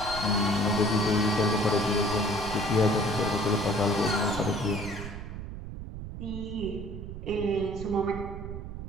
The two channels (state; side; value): noise; right; rumble, 8 dB below the sound